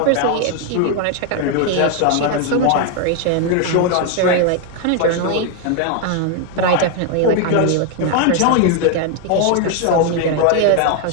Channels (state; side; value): different; both; correlation 0.01